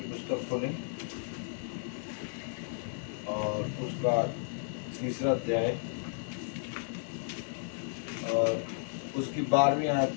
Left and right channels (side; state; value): right; silent; digital silence